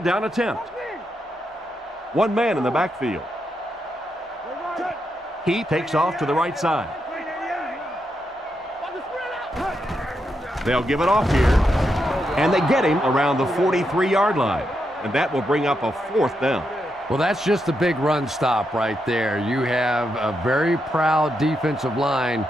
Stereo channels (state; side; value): normal; both; correlation 0.83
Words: down attempt. 1 man in the backfield. He takes off to the right side. They'll give it off here. And they get him around the 43-yard line. And that will bring up a 4th down. Well, that's just a big run stop right there. You have a very proud defensive line